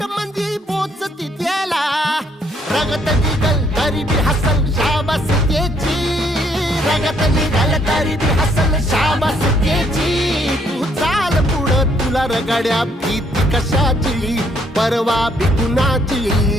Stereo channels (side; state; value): both; normal; correlation 0.68